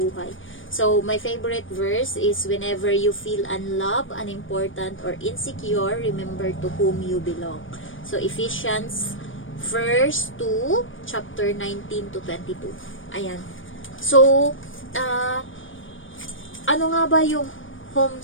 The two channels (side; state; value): right; late; 0.57 ms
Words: So, my favorite verse is, whenever you feel unloved, unimportant, or insecure, remember to whom you belong. So, Ephesians verse 2, chapter 19 to 22. Ayan. So, ano nga ba yung